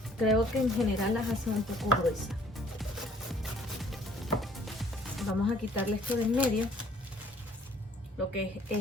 creo que en general las hacen un poco gruesas. Vamos a quitarle esto de en medio, lo que es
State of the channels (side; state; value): both; normal; correlation 0.59